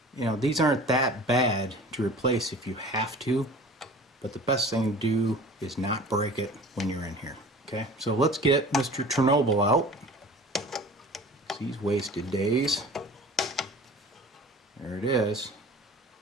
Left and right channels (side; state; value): both; normal; correlation 0.42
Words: You know, these aren't that bad to replace if you have to, but the best thing to do is not break it when you're in here. Okay, so let's get Mr. Chernobyl out. He's wasted days. There it is.